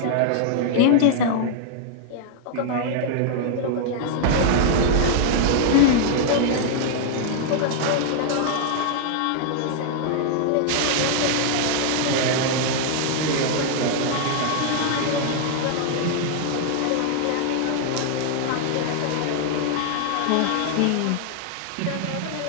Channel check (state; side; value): different; both; correlation 0.00